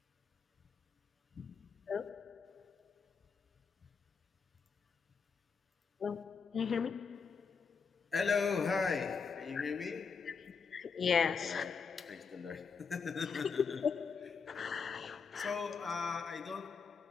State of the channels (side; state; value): right; quieter; 5.6 dB